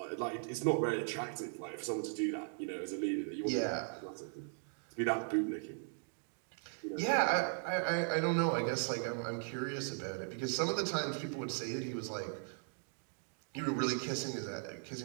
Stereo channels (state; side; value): silent; left; 52 dB below the other